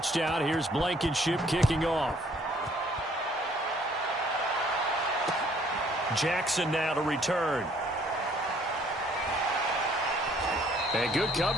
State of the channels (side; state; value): both; normal; correlation 0.61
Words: here's Blankenship kicking off. Jackson now to return. And good